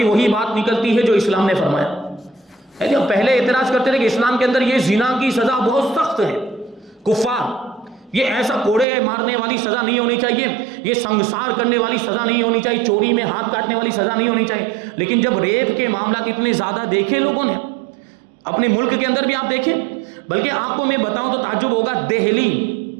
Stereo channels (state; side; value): drops out; left; at 8.8 s